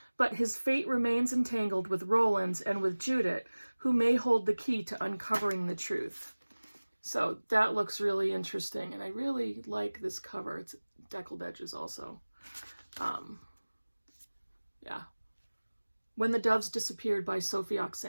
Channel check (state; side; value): inverted; both; correlation -1.00